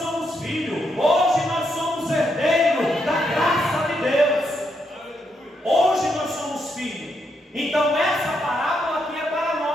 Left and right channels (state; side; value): normal; both; correlation 0.79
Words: filhos, hoje nós somos herdeiros da graça de Deus, hoje nós somos filhos. Então essa parábola aqui é para